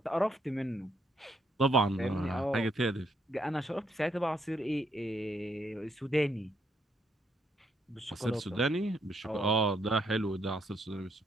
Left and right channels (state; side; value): normal; both; correlation 0.74